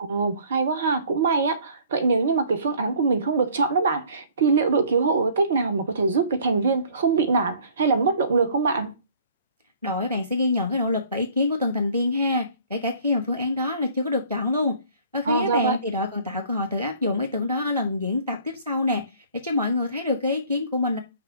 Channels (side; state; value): both; inverted; correlation -0.54